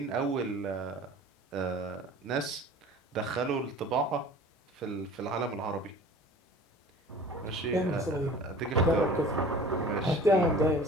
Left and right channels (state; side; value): normal; both; correlation 0.43